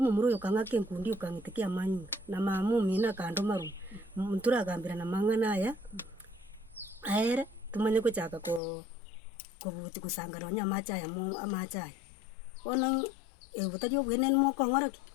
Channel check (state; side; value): drops out; right; at 8.6 s